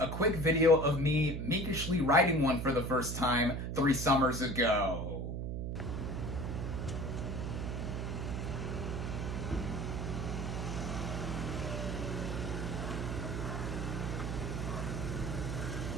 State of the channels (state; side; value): noise; right; hum, 3 dB below the sound